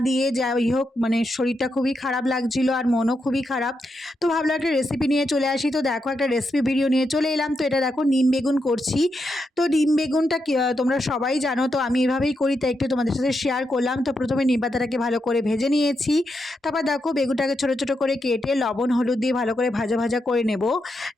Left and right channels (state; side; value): normal; both; correlation 0.84